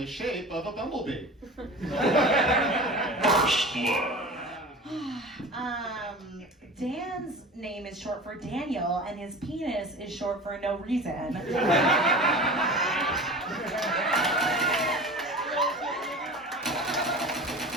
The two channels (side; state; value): both; normal; correlation 0.35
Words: shape of a bumblebee. First blood. Dan's name is short for Daniel, and his penis is short for no reason.